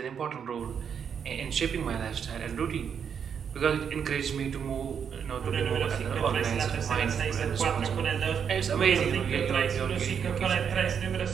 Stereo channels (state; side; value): quieter; left; 7.4 dB